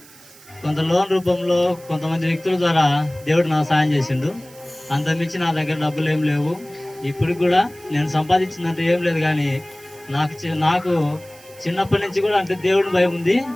కొంత లోన్ రూపంలో కొంతమంది వ్యక్తుల ద్వారా దేవుడు నాకు సాయం చేసిండు. అంతమించి నా దగ్గర డబ్బులు ఏం లేవు. ఇప్పుడు కూడా నేను సంపాదించిందంటే ఏం లేదు, కానీ నాకు చిన్నప్పటి నుంచి కూడా అంటే దేవుడిని భయం ఉంది.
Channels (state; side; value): noise; right; hiss, 23 dB below the sound